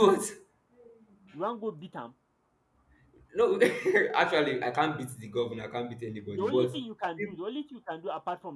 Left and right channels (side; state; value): both; identical; correlation 1.00